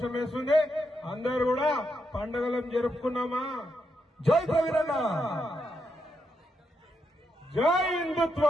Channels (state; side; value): normal; both; correlation 0.82